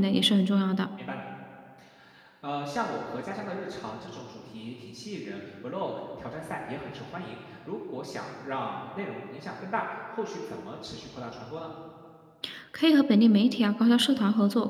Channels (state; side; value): identical; both; correlation 1.00